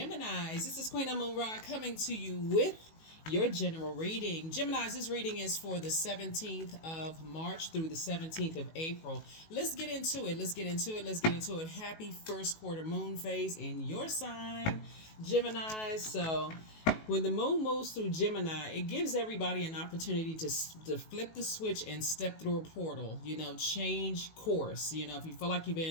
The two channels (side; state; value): right; late; 19 ms